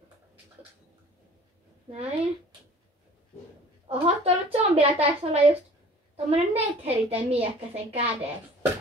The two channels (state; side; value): normal; both; correlation 0.48